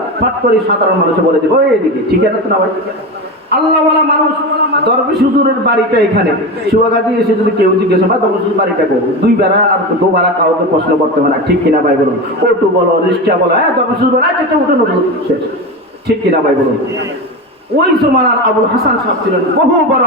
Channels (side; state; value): both; normal; correlation 0.22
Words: ফট করে সাধারণ মানুষে বলে দেবে ওই এদিকে, ঠিক আছে তো না ভাই? আল্লাহওয়ালা মানুষ দরবেশ হুজুরের বাড়িটা এখানে। সুয়াগাজি এসে যদি কেউ জিজ্ঞেস হয় দরবেশ হুজুর বাড়িটা করবো, দুই বেড়া আর দুবারা কাউকে প্রশ্ন করতে হয় না, ঠিক কিনা ভাই বলুন? অটো বলো, রিক্সা বলো, হ্যাঁ দরবেশ হুজুর আচ্ছা উঠে নতুন শেষ, ঠিক কিনা ভাই বলুন? ওই জমানার আবুল হাসান সাহেব ছিলেন বহু বড়